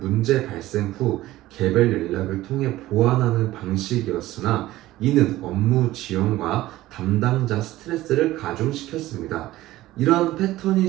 발생 후 개별 연락을 통해 보완하는 방식이었으나 이는 업무 지연과 담당자 스트레스를 가중시켰습니다. 이러한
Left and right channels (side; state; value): left; quieter; 16.3 dB